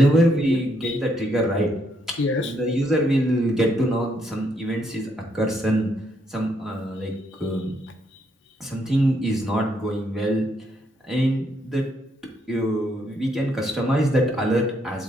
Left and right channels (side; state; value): both; normal; correlation 0.74